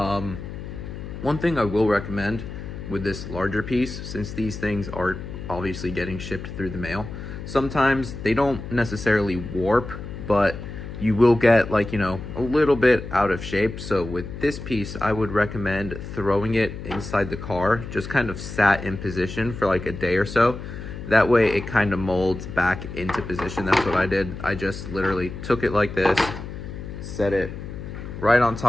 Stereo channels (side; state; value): left; noise; hum, 9 dB below the sound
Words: thing I will recommend with this larger piece, since these things are obviously getting shipped through the mail, sometimes they don't necessarily warp, but you will get, like, you know, a little bit out of shape. So with this piece, I would recommend throwing it inside the car, just kind of sat in position for like a day or so. That way it kind of molds back into position. That's what I did. I just literally took it like this, set it right on